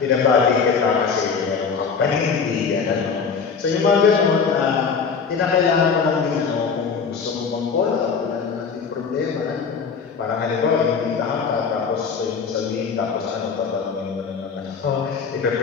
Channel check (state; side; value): quieter; right; 5.7 dB